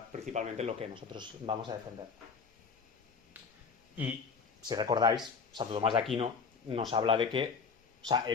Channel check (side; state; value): right; quieter; 5.6 dB